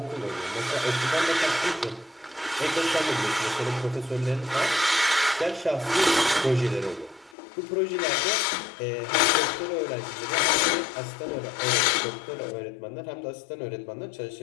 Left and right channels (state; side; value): drops out; right; at 7.4 s